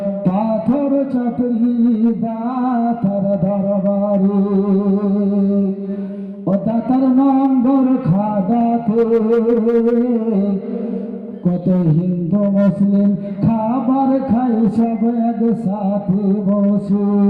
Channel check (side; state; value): both; identical; correlation 1.00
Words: পাথর চাপড়ি দাতার দরবারে, ও দাতার নম্বর খাদাতে কত হিন্দু মুসলিম খাবার খাই সব একসাথে বসে,